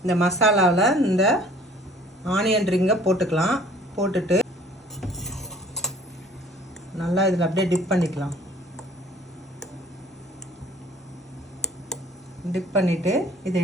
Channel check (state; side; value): normal; both; correlation 0.53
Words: இந்த மசாலாவில் இந்த ஆனியன் ரிங்கை போட்டுக்கலாம். போட்டுட்டு நல்லா இதில் அப்படியே டிப் பண்ணிக்கலாம். டிப் பண்ணிவிட்டு